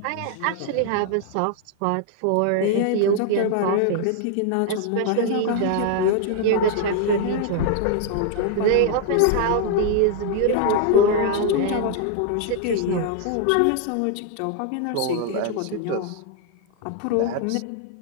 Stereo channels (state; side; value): different; both; correlation 0.00